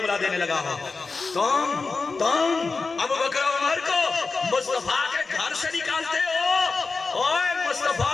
دینے لگا ہو۔ تم ابو بکر و عمر کو مصطفیٰ کے گھر سے نکالتے ہو۔ اوہ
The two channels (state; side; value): quieter; right; 4.2 dB